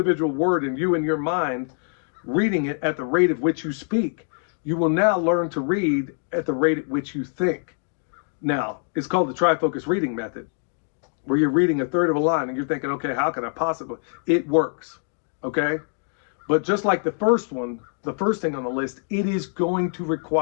word and you in your mind reading it at the rate at which you speak. You will now learn to read at the rate at which you think. Now, it's called the trifocus reading method, where you're reading a third of a line and you're thinking, okay, how can I possibly? It works, okay? But just like the first one, the first thing on the list, it is going to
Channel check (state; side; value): silent; right; 62 dB below the other